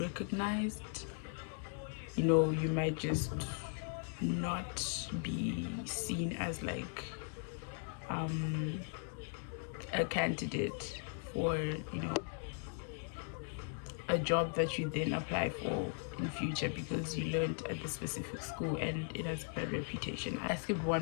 You know, you might just not be seen as like a candidate for, you know, a job that you then apply for in future because you learned at the specific school and it has a bad reputation. I skipped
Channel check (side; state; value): right; silent; 52 dB below the other